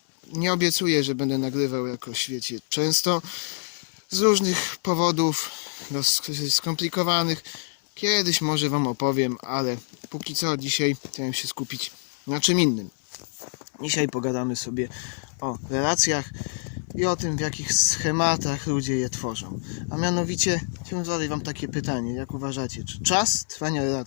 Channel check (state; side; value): silent; right; 59 dB below the other